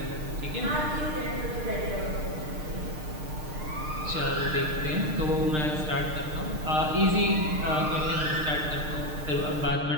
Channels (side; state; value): left; late; 6.6 ms